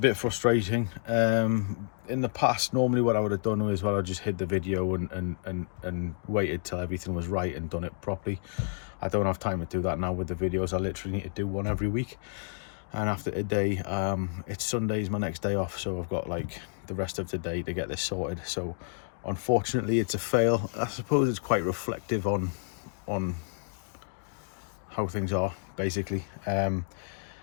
frustrating. In the past, normally what I would have done is, well, I just hid the video and waited till everything was right and done it properly. I don't have time to do that now with the videos. I literally need to do one every week. And after today, it's Sunday's my next day off, so I've got like the rest of today to get this sorted. So unfortunately it's a fail. I suppose it's quite reflective on how things are, basically.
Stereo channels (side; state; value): right; silent; digital silence